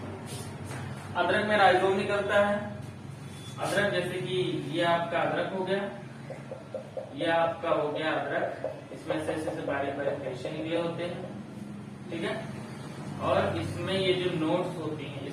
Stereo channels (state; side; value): identical; both; correlation 1.00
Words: अदरक में राइजोम निकलता है। अदरक जैसे कि ये आपका अदरक हो गया, ये आपका हो गया अदरक, इसमें से ऐसे बारीक बारीक रेशे निकले होते हैं, ठीक है। और इसमें ये जो नोड्स होती हैं,